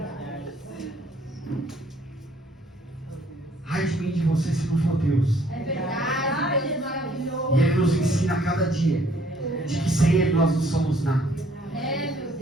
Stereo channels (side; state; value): both; normal; correlation 0.63